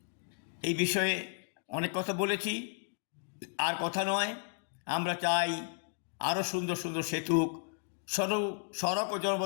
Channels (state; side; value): silent; right; digital silence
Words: এই বিষয়ে অনেক কথা বলেছি, আর কথা নয়। আমরা চাই আরও সুন্দর সুন্দর সেতু। সড়ক ও